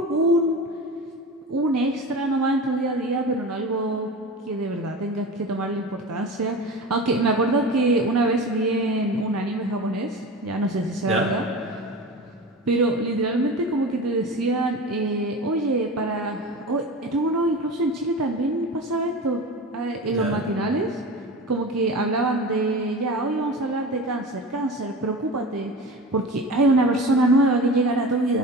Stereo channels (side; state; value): both; normal; correlation 0.31